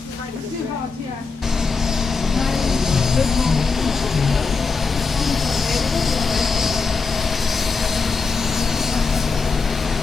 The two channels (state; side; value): quieter; right; 4.7 dB